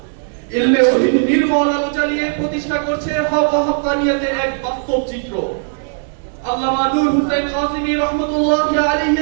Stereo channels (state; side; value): silent; left; 67 dB below the other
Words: ইলমে ওহীর নির্মল আলো জ্বালিয়ে প্রতিষ্ঠা করছে হক ও হক্কানিয়াতের এক বাস্তব চিত্র। আল্লামা নূর হোসেন কাসিমি রাহমাতুল্লাহি